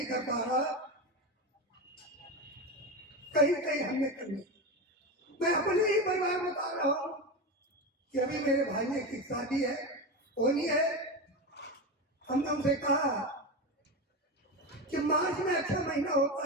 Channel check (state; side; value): normal; both; correlation 0.19